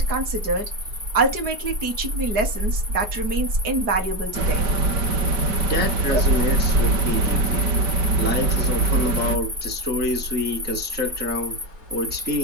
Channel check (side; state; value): left; late; 4.7 ms